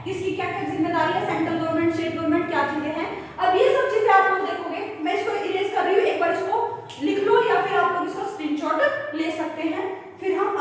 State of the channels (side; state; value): both; identical; correlation 1.00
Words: किसकी क्या क्या जिम्मेदारी है, सेंट्रल गवर्नमेंट, स्टेट गवर्नमेंट, क्या चीजें हैं। अब ये सब चीजें आप लोग देखोगे, मैं इसको इरेज कर रही हूँ, एक बार इसको लिख लो या फिर आप लोग इसका स्क्रीनशॉट ले सकते हैं, फिर हम